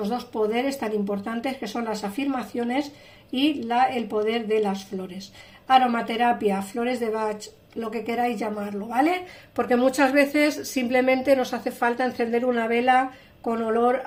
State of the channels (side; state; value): both; identical; correlation 1.00